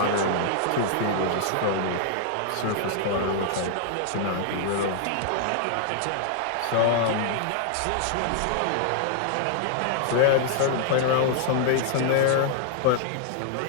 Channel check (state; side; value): different; both; correlation 0.00